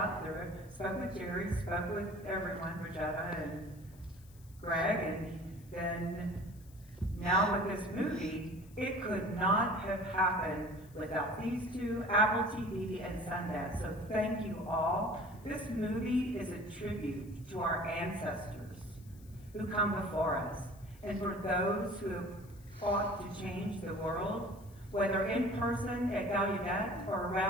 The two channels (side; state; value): left; noise; hiss, 26 dB below the sound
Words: through it, spoke with Jerry, spoke with everyone, Rosetta and Greg, and then now with this movie, it could not have happened without these two, Apple TV and Sundance. So thank you all. This movie is a tribute to our ancestors who come before us, and for those who have fought to change the world, whether in person at Gallaudet or